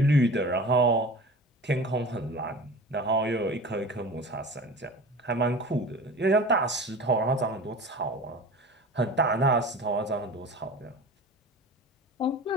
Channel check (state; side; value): normal; both; correlation 0.36